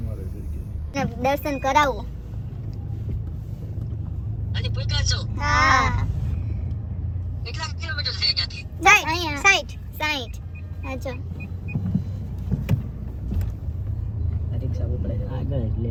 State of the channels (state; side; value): identical; both; correlation 1.00